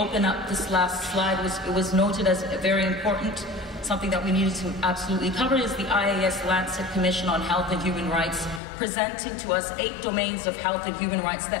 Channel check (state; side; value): drops out; right; at 8.6 s